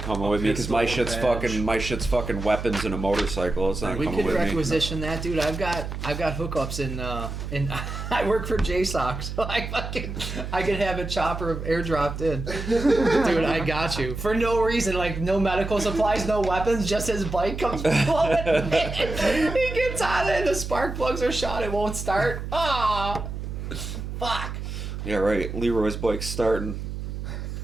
coming a with me because my pistol, shit's badge. fucking weapons and a motorcycle. It's not We coming could with me. requisition that, dude. I've got hookups in I work for JSOC, so I could have a chopper airdropped in. Dude, I got you. For no reason, like no medical supplies, no weapons, just his bike comes blowing in. He gets on it, the spark plugs are shot, it won't start. Ah, fuck. Yeah, right. Leroy's bike's starting.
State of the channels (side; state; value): right; noise; hum, 6 dB below the sound